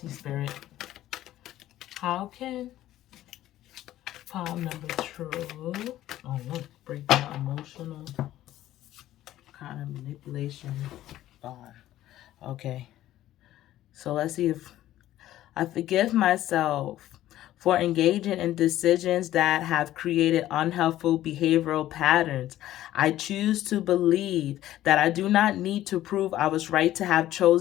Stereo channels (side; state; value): right; quieter; 13.8 dB